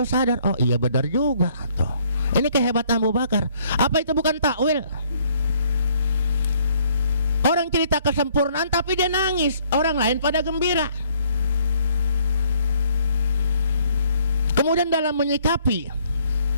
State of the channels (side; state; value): both; inverted; correlation -0.63